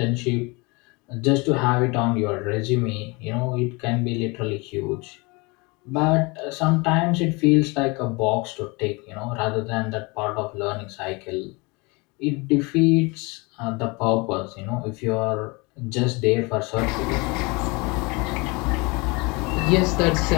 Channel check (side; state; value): right; quieter; 27.0 dB